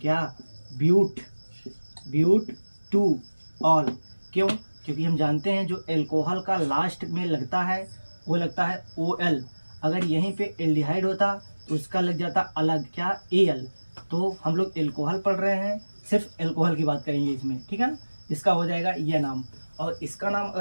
ब्यूट 2 ऑल। क्यों, क्योंकि हम जानते हैं जो एल्कोहल का लास्ट में लगता है वो लगता है OL। अगर यहीं पे एल्डिहाइड होता तो उसका लग जाता अलग क्या, AL। तो हम लोग एल्कोहल पढ़ रहे हैं, सिर्फ एल्कोहल की बात करेंगे इसमें, ठीक है ना। इसका हो जाएगा यह नाम। और इसका नाम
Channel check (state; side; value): inverted; both; correlation -1.00